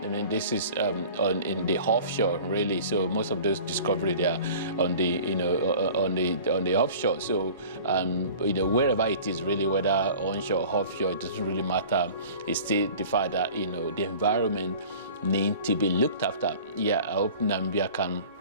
I mean, this is in the offshore really. So most of those discoveries, they are on the on the offshore. So wherever it is really, whether onshore or offshore, it doesn't really matter. It's still the fact that the environment need to be looked after. I hope Namibia can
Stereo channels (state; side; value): inverted; both; correlation -0.43